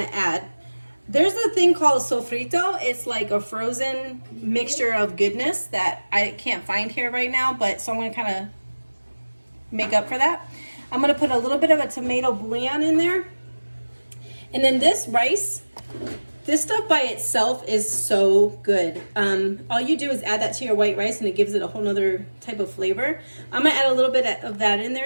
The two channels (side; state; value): both; inverted; correlation -1.00